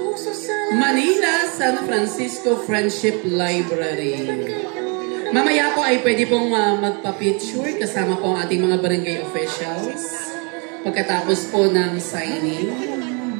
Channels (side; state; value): left; quieter; 34.3 dB